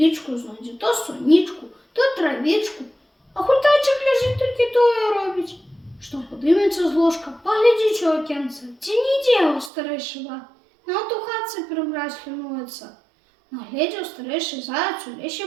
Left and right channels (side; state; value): left; drops out; at 9.7 s